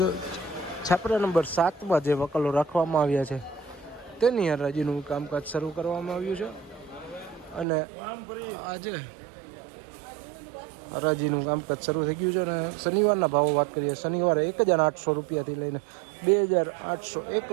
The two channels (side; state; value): left; drops out; at 7.7 s